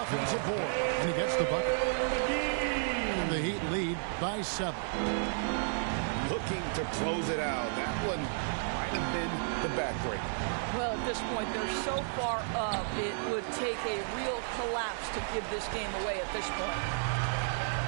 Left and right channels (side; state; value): left; silent; 56 dB below the other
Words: board. And he gets the bucket. And the Heat lead by 7. Looking to close it out. That one might have been the backbreaker. Well, at this point, they're so far up, it would take a real collapse to give this game away at this point.